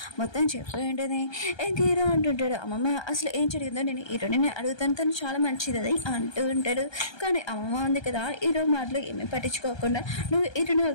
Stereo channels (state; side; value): late; right; 1.3 ms